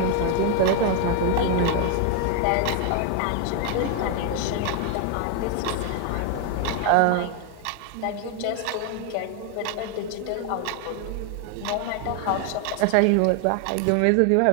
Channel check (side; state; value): both; different; correlation 0.01